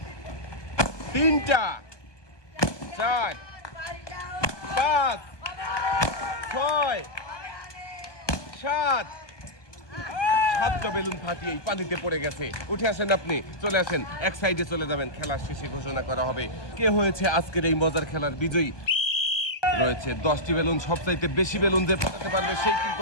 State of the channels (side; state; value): right; late; 1.2 ms